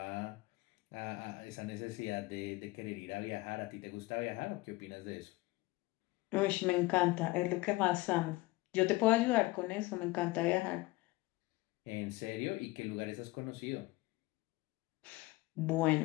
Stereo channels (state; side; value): quieter; right; 20.8 dB